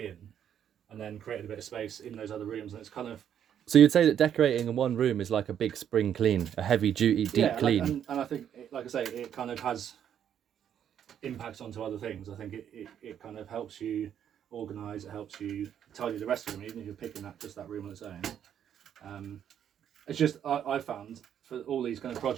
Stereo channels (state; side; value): quieter; left; 9.4 dB